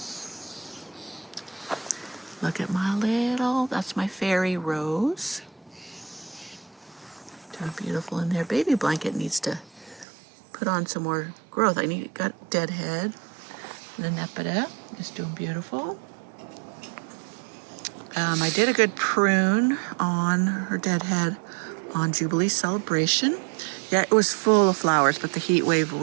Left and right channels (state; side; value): drops out; left; at 10.1 s